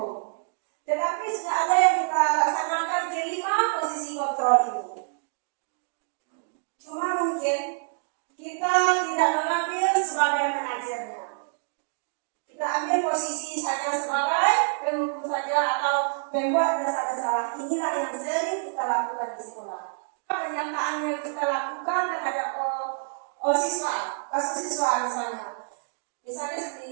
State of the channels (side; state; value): left; silent; digital silence